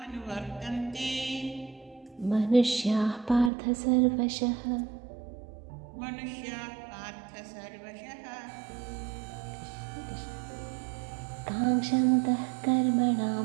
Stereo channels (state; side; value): drops out; left; at 3.5 s